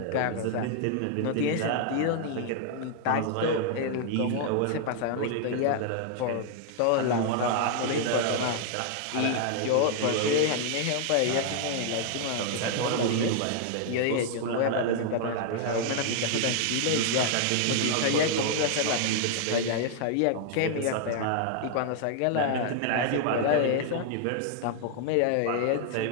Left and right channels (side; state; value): both; different; correlation 0.00